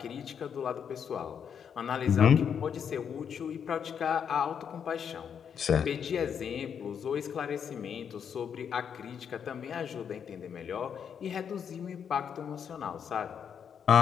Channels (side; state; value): right; quieter; 7.6 dB